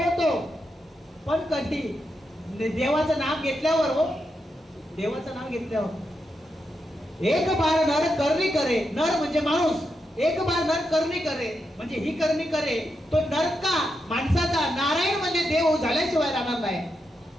पण कधी? देवाचं नाम घेतल्यावर. हो, देवाचं नाम घेतल्यावर. एक बार नर करणी करे, नर म्हणजे माणूस. एक बार नर करणी करे म्हणजे ही करणी करे, तो नर का माणसाचा, नारायण म्हणजे देव झाल्याशिवाय राहणार नाही.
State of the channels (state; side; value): normal; both; correlation 0.85